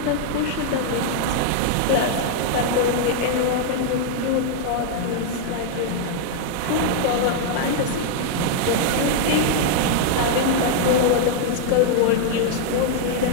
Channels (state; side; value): different; both; correlation -0.01